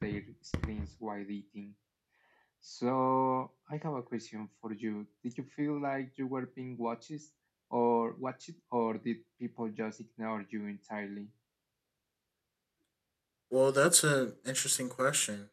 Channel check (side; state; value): both; identical; correlation 1.00